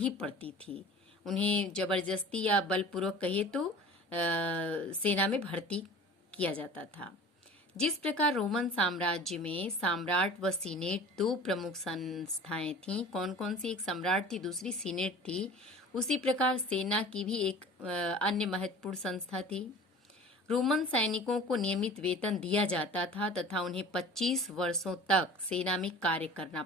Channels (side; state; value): both; normal; correlation 0.41